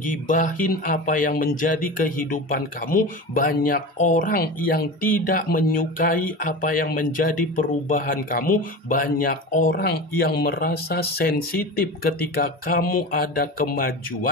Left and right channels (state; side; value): normal; both; correlation 0.29